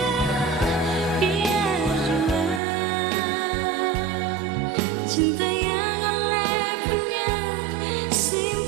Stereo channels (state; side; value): drops out; left; at 2.6 s